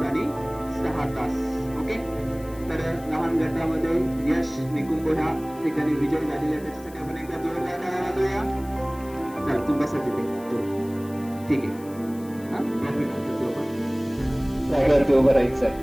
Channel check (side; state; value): left; noise; hiss, 22 dB below the sound